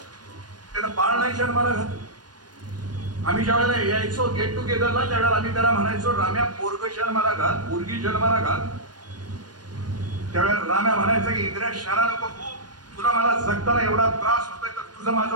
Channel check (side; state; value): left; late; 0.69 ms